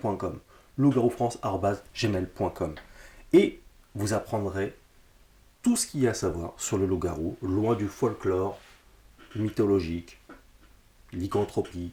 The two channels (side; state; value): both; identical; correlation 1.00